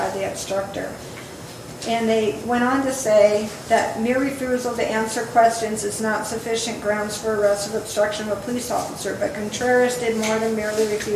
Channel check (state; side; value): identical; both; correlation 1.00